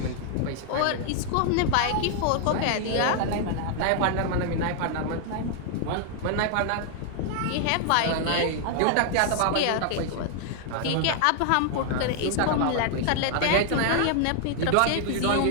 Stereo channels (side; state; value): both; different; correlation 0.00